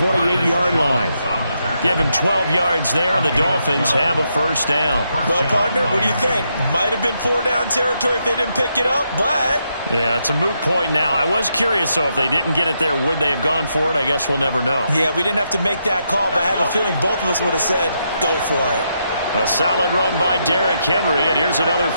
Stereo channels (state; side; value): inverted; both; correlation -0.80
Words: line. Give him 12 yards there, and the Dolphins have a first down. Well, partner, what do you think? Might have been 4-down territory if they didn't pick it up, but... Yeah, it's a moot point now. I was curious, so if they didn't get it there, would they have gone for it? I guess we'll never know. Yeah, we didn't have to make that call, but I have a feeling both of us would have said, go for it. A solid run by Derrick Henry, and here's another